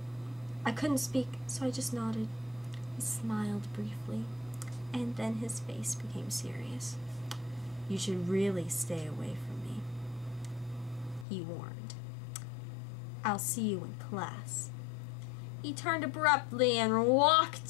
I couldn't speak, so I just nodded. He smiled briefly, and then his face became serious. You should really stay away from me, he warned. I'll see you in class. He turned abruptly and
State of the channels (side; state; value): right; drops out; at 11.2 s